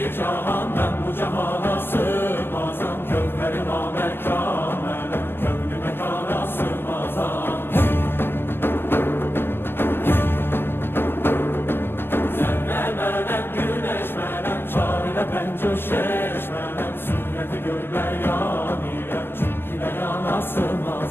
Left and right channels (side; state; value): right; late; 0.10 ms